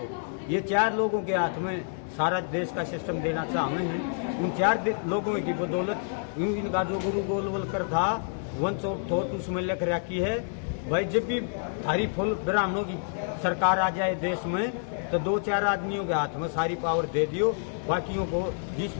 ये 4 लोगों के हाथ में सारा देश का सिस्टम देना चाहते हैं। उन 4 लोगों की बदौलत इनका जो गुरु गोलवलकर था वंश ऑफ थॉट उसमें लिख रखी है, भाई जब भी थारी फुल ब्राह्मणों की सरकार आ जाए देश में तो 2-4 आदमियों के हाथ में सारी पावर दे दियो, बाकियों को जिस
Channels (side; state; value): right; silent; 59 dB below the other